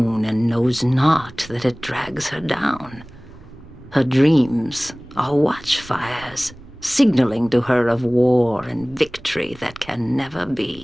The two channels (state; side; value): noise; right; rumble, 23 dB below the sound